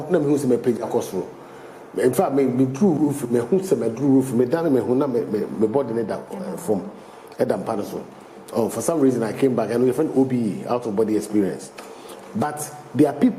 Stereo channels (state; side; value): identical; both; correlation 1.00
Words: na me hu say me page across road. In fact, me drew roof, me hu say me drew roof, me down me hu na me body ne that from Edam Panaso. Oh, for some reason I came back and we found OBE, out of body experience. But there are